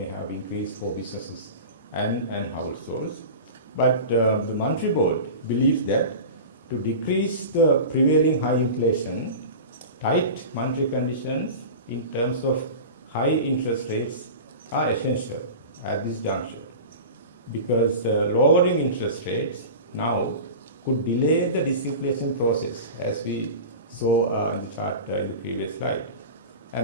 have increased for businesses and households. But the Monetary Board believes that to decrease the prevailing high inflation, tight monetary conditions in terms of high interest rates are essential at this juncture, because lowering interest rates now could delay the disinflation process, as we saw in the chart in the previous slide.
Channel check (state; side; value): inverted; both; correlation -0.32